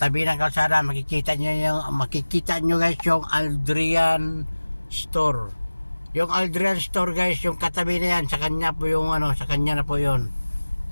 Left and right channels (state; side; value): inverted; both; correlation -1.00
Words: ng kalsada, makikita nyo guys yung Aldrian Store. Yung Aldrian Store guys, yung katabi na yan, sa kanya po yung sa kanya na po yun.